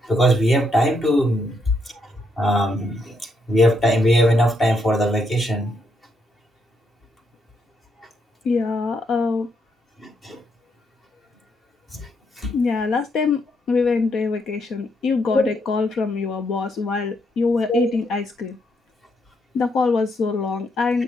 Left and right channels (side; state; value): both; normal; correlation 0.77